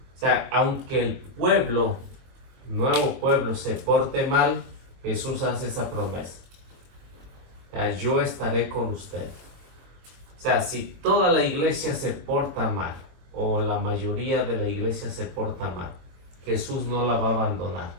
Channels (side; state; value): left; late; 22 ms